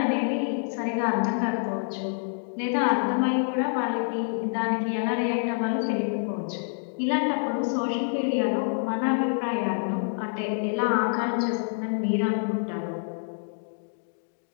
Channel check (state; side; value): silent; right; 60 dB below the other